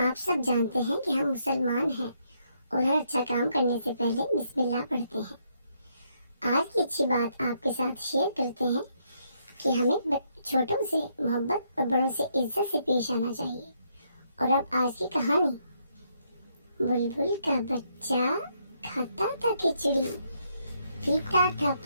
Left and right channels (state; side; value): inverted; both; correlation -0.74